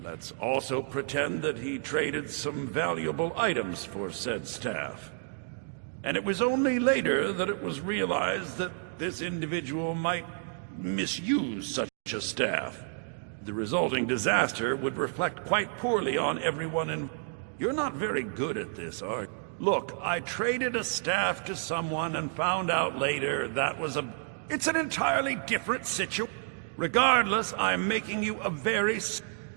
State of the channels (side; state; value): left; silent; digital silence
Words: Let's also pretend that he traded some valuable items for said staff. And it was only later that it was realized that this individual might misuse such a staff. The resulting disaster would reflect quite poorly on everyone in... You're not very good at this, are you? Look, I traded a staff to someone and found out later that was a... It's an entirely different situation. Regardless, I'm making you a very...